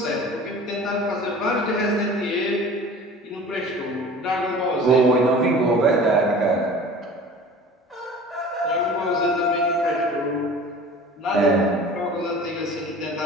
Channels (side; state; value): both; normal; correlation 0.42